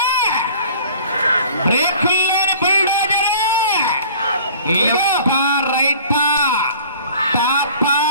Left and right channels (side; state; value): both; inverted; correlation -0.48